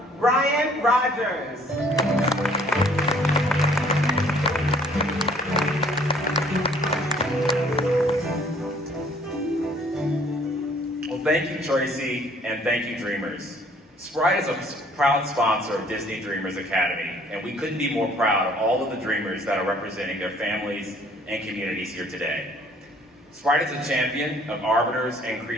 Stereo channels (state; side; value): normal; both; correlation 0.58